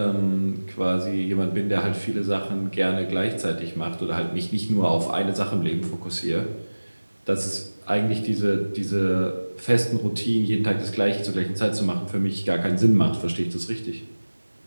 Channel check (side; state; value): both; inverted; correlation -1.00